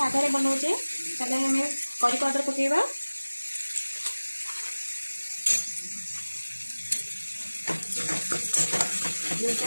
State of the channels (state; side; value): inverted; both; correlation -1.00